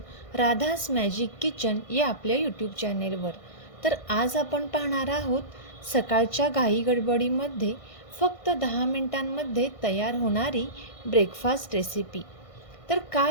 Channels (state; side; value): late; right; 1.6 ms